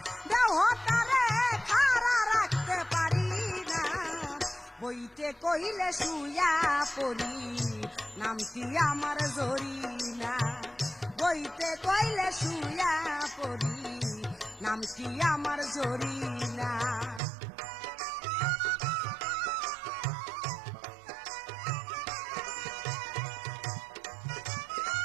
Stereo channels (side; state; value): left; drops out; at 17.2 s